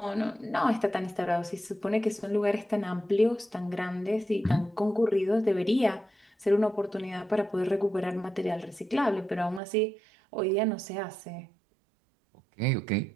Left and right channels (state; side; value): drops out; left; at 9.6 s